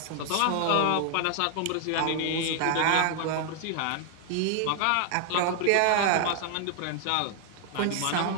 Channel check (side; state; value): both; different; correlation 0.00